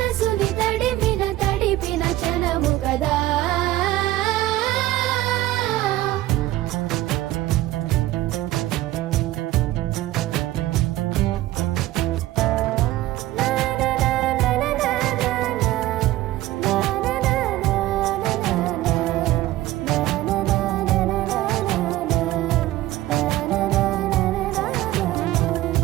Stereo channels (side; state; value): left; quieter; 16.0 dB